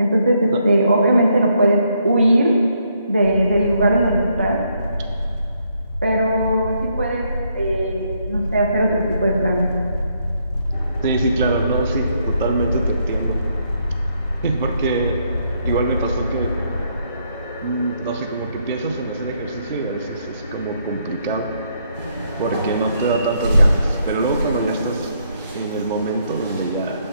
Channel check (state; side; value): inverted; both; correlation -0.74